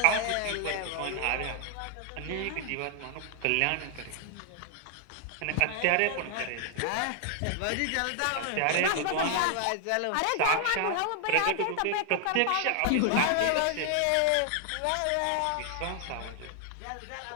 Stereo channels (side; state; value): both; different; correlation 0.00